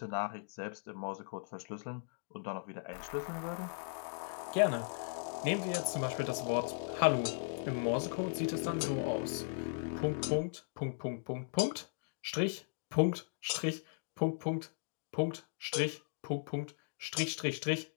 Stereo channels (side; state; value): right; silent; digital silence